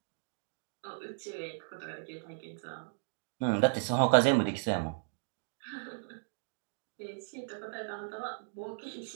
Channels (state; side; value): silent; left; digital silence